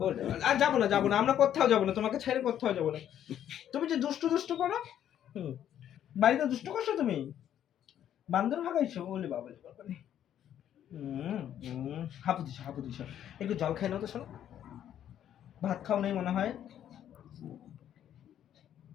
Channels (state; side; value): quieter; right; 10.5 dB